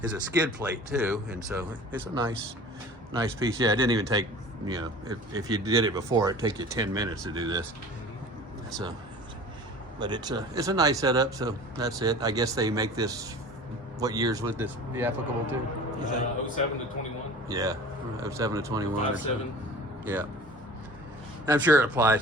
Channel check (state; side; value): normal; both; correlation 0.41